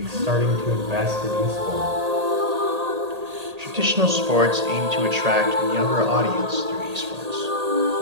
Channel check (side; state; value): left; late; 1.8 ms